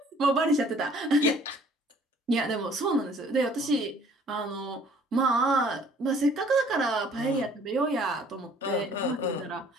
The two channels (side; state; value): both; normal; correlation 0.56